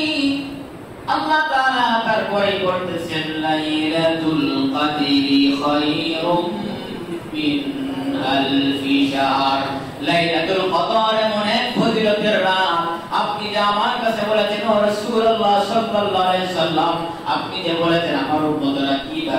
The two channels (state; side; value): identical; both; correlation 1.00